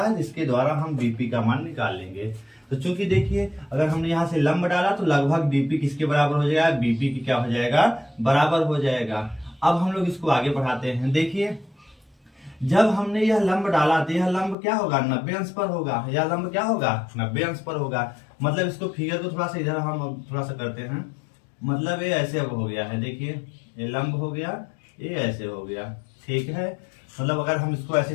जिसके द्वारा हम BP का मान निकाल लेंगे। तो चूंकि देखिए अगर हमने यहाँ से लंब डाला तो लगभग BP किसके बराबर हो जाएगा, BP की क्या हो जाएगा, बराबर हो जाएगा। अब हम लोग इसको आगे बढ़ाते हैं। देखिए जब हमने यह लंब डाला तो यह लंब क्या होगा, 90 अंश पर होगा, यह लंब क्या होगा, 90 अंश पर होगा। मतलब इसको फिगर को थोड़ा सा इधर हम थोड़ा सा करते हैं, मतलब ये ऐसे अब हो गया है, देखिए ये लंब हो गया, ये ऐसे हो गया, ठीक है। मतलब अगर हम इसको ऐसे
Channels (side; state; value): right; drops out; at 14.6 s